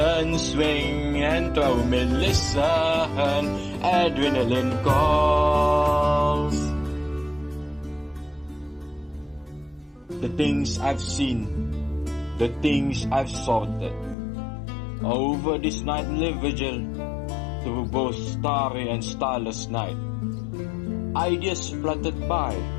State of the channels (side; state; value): right; drops out; at 14.2 s